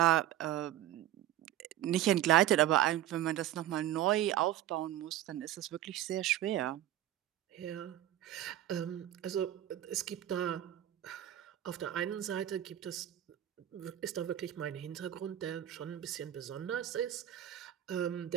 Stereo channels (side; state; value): left; quieter; 12.4 dB